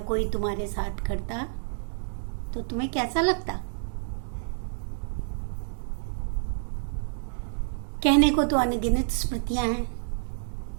कोई तुम्हारे साथ करता तो तुम्हें कैसा लगता। कहने को तो अनगिनत स्मृतियां हैं,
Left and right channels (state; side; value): silent; left; digital silence